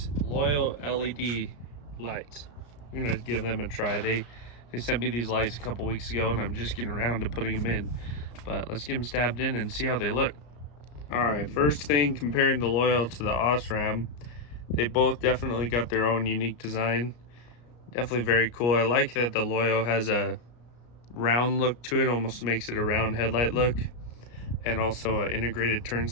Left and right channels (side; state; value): right; late; 34 ms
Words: LOYO LED lights. We're going to give them a try. They sent me these lights a couple weeks ago and I'm just getting around to putting them in. But let's get them stabbed in and see how they look. Alright, first thing, comparing the LOYO to the OSRAM, they both definitely got their own unique design. Definitely very cool. I like that the LOYO has a round look to it, almost makes it a round headlight look. And also an integrated turn